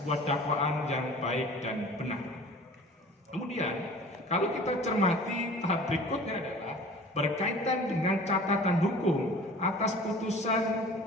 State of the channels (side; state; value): both; normal; correlation 0.44